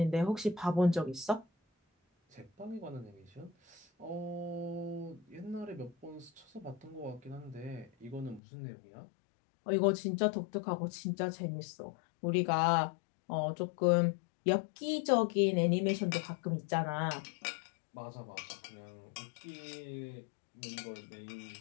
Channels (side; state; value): right; drops out; at 8.4 s